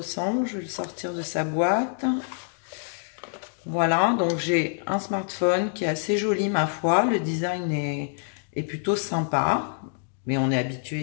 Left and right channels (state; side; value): silent; right; digital silence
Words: Je vais le sortir de sa boîte. Voilà, donc j'ai un smartphone qui est assez joli, ma foi. Le design est plutôt sympa, mais on est